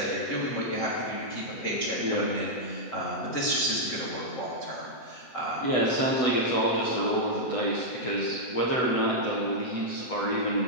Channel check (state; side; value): late; right; 8.1 ms